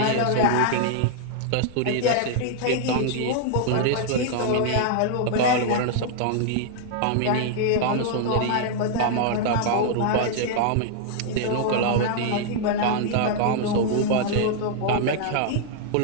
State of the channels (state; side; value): different; both; correlation -0.01